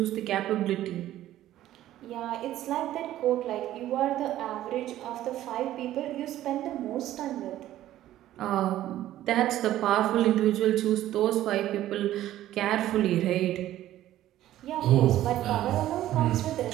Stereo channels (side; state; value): left; quieter; 13.5 dB